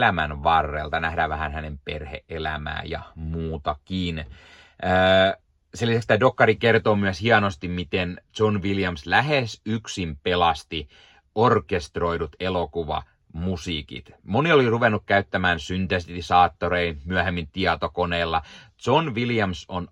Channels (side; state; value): both; identical; correlation 1.00